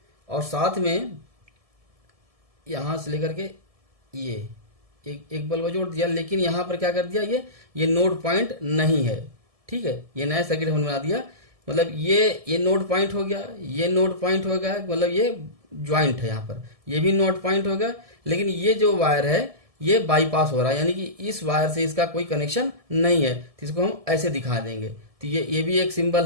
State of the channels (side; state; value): left; late; 1.7 ms